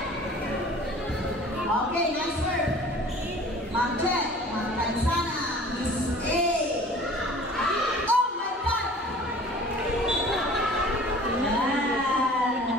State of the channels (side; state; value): both; normal; correlation 0.46